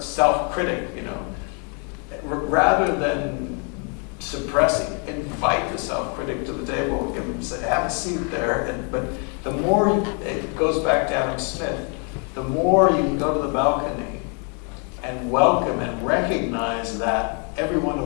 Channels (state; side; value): quieter; right; 38.2 dB